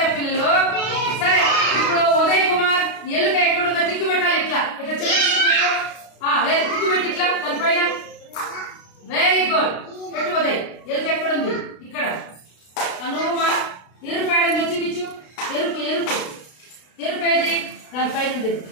పిల్లలు? సరే. ఇప్పుడు ఉదయ్ కుమార్ ఎలుక ఎక్కడుందో టిక్కు పెట్టాలి. ఇట్లా చిన్న టిక్కు పెట్టు. టిక్కు పెట్టి ఇట్లా దానిపైన. Very good. పెట్టు ఉదయ్. ఎలుక ఎక్కడుంది? ఇక్కడ. ఎరుపు చూపించు. ఎరుపు దానిపైన ఉండేది,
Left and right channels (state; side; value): late; right; 32 ms